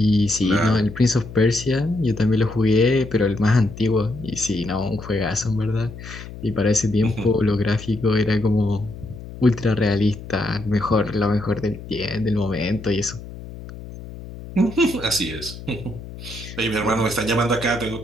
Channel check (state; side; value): noise; left; hum, 13 dB below the sound